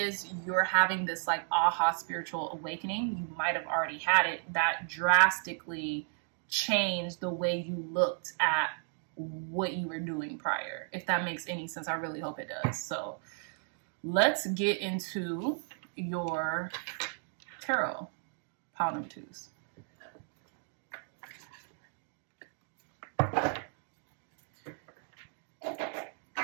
you're having this like aha spiritual awakening. You might have already had it that drastically changed the way you looked at what you were doing prior. If that makes any sense, I really hope it does. So let's get into your tarot, pile number 2s.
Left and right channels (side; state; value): left; silent; 55 dB below the other